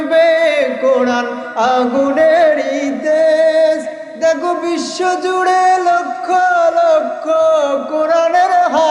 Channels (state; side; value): identical; both; correlation 1.00